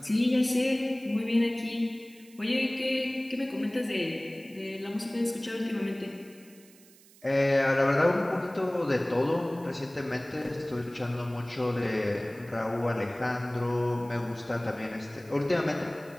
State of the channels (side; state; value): right; noise; hiss, 25 dB below the sound